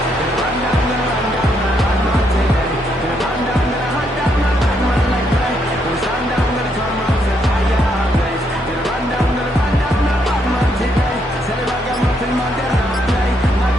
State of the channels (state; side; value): normal; both; correlation 0.75